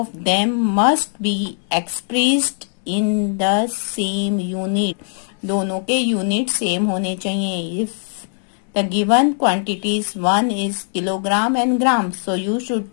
them must be expressed in the same unit. दोनों के यूनिट सेम होने चाहिए. If the given quantities one is kilogram and gram, so you should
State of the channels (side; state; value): right; silent; 66 dB below the other